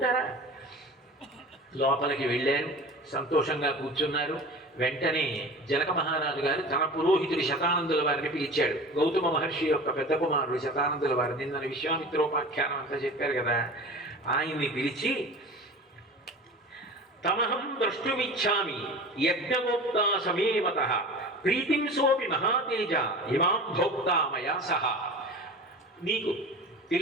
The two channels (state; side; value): normal; both; correlation 0.36